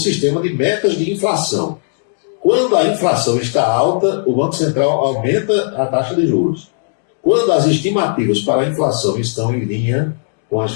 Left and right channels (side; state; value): right; silent; digital silence